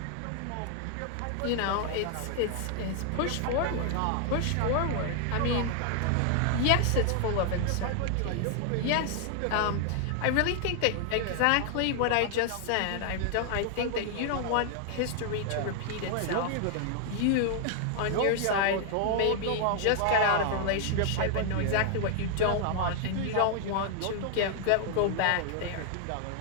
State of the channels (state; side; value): different; both; correlation 0.00